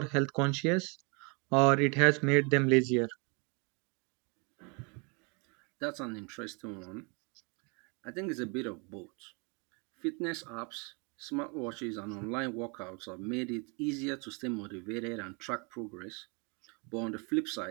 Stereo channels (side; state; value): left; quieter; 31.8 dB